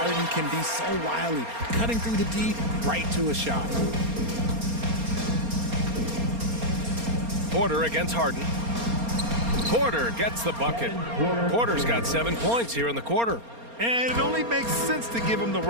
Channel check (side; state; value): left; late; 4.3 ms